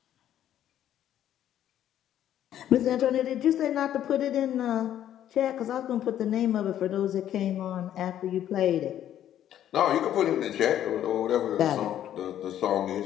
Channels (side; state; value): right; quieter; 11.1 dB